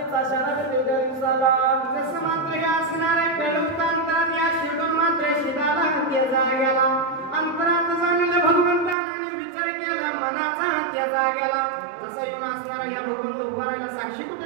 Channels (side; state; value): left; drops out; at 9.0 s